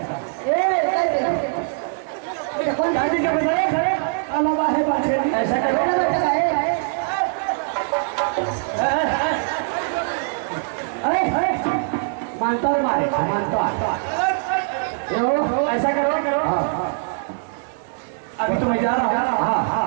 कौन गाड़ी का पैसा अलावा है बात ऐसा करो मानता है मानता ऐसा करो अभी तो मैं जा रहा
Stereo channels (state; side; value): silent; left; 64 dB below the other